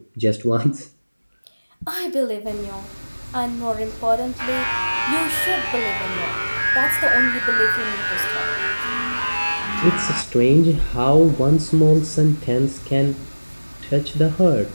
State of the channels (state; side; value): inverted; both; correlation -1.00